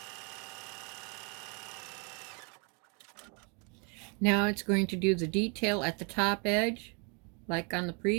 Now it's going to do the detail at the top edge, like on the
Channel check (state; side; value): quieter; left; 34.7 dB